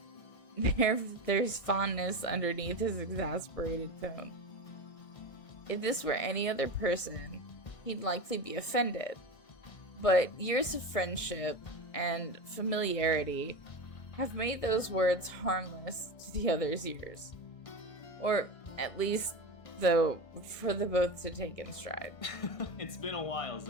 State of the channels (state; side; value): late; right; 1.6 ms